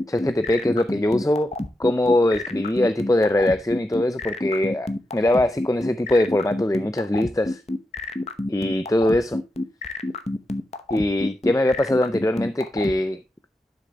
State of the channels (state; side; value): normal; both; correlation 0.86